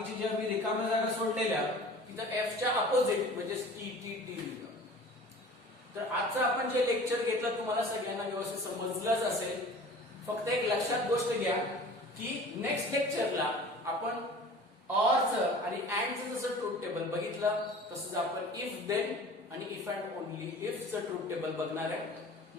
ज्या मी रिकाम्या जागा सोडलेल्या तिथं एफच्या अपोजिट म्हणजे टी टी टी लिहिलं. तर आजचं आपण जे लेक्चर घेतलं तुम्हाला सगळ्यांना व्यवस्थित समजलंच असेल. फक्त एक लक्षात गोष्ट घ्या की नेक्स्ट लेक्चरला आपण ऑरचं आणि अँडचं जसं ट्रूथ टेबल बघितलं तसंच आपण इफ देन आणि इफ अँड ओनली इफचं ट्रूथ टेबल बघणार आहे.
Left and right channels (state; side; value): normal; both; correlation 0.43